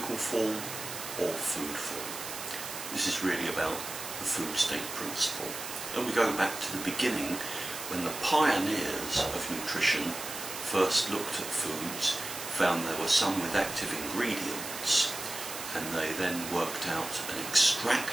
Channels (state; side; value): noise; right; hiss, 8 dB below the sound